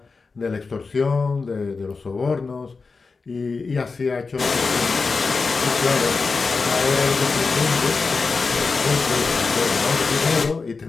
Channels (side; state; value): right; quieter; 4.4 dB